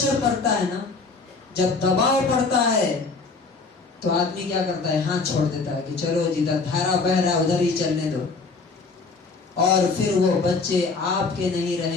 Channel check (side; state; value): right; quieter; 4.2 dB